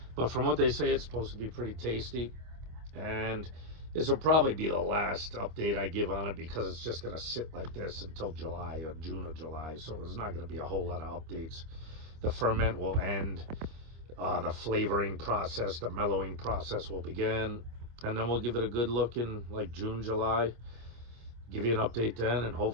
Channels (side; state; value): left; late; 25 ms